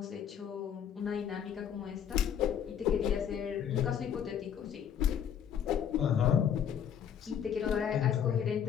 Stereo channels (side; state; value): right; quieter; 8.6 dB